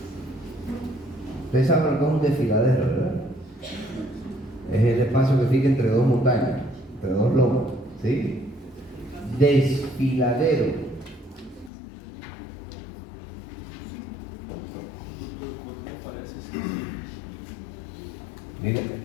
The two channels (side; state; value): right; drops out; at 11.7 s